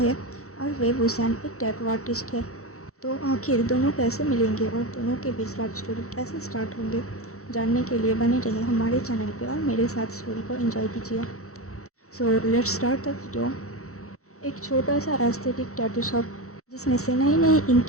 और वेब हुसैन एक टैटू आर्टिस्ट है। तो आखिर दोनों कैसे मिलेंगे और दोनों के बीच लव स्टोरी कैसे स्टार्ट होंगे, जानने के लिए बने रहे हमारे चैनल पे और मेरे साथ स्टोरी को एंजॉय कीजिए। So let's start the video. एक छोटा सा एस्थेटिक टैटू शॉप जिसमें से नई नई इंक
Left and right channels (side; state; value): right; late; 0.64 ms